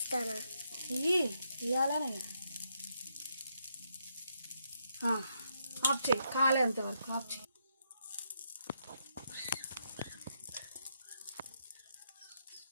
ఇవ్వాలనే ఆఫ్ చేయి కాలేంత వరకు ఆఫ్ చేయి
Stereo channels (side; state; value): both; inverted; correlation -0.78